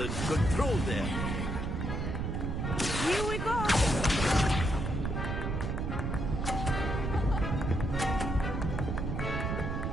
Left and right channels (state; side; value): noise; right; rumble, 1 dB below the sound